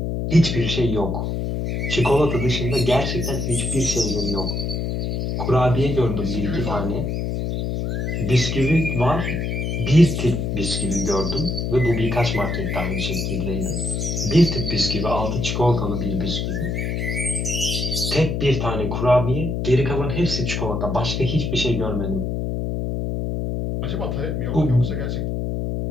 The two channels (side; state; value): left; noise; hum, 1 dB below the sound